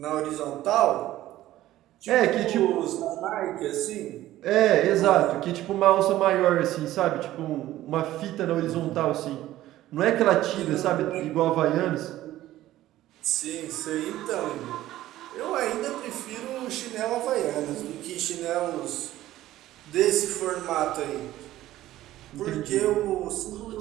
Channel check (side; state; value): left; quieter; 14.7 dB